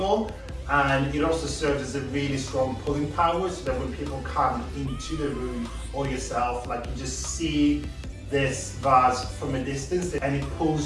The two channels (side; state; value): both; identical; correlation 1.00